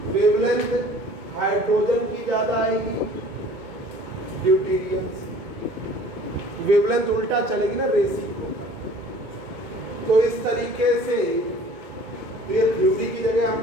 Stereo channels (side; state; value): left; late; 2.2 ms